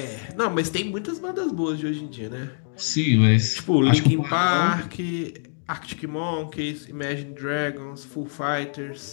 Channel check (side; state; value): right; silent; digital silence